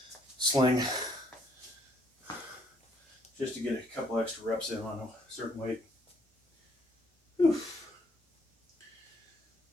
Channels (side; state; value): both; normal; correlation 0.67